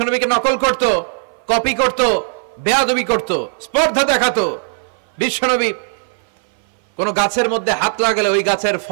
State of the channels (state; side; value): silent; left; 60 dB below the other